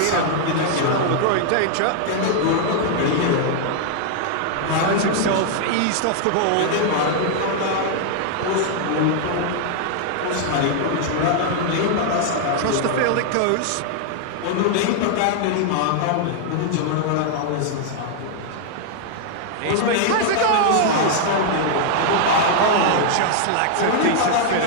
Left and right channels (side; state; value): both; different; correlation 0.00